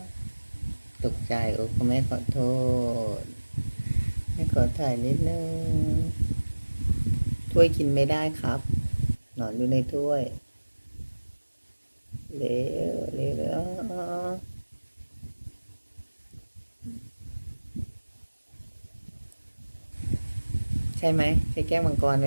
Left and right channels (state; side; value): inverted; both; correlation -1.00